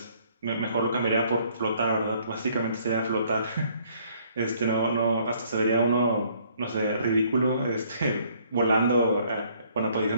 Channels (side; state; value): both; inverted; correlation -0.63